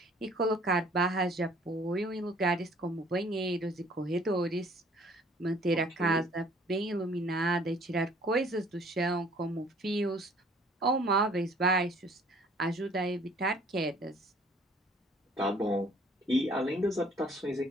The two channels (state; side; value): normal; both; correlation 0.56